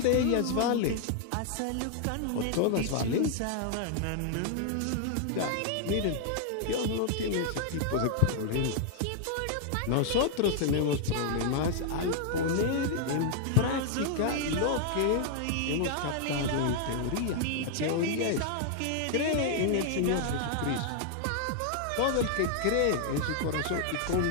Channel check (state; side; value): different; both; correlation 0.00